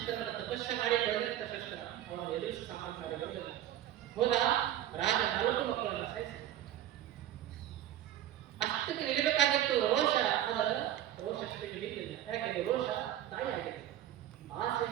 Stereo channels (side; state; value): left; quieter; 12.1 dB